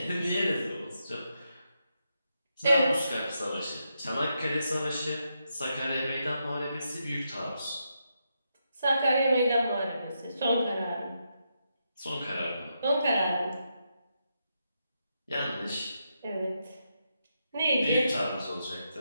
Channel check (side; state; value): both; inverted; correlation -0.83